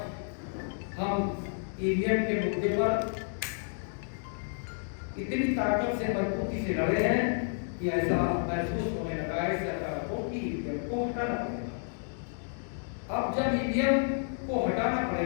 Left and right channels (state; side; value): silent; right; digital silence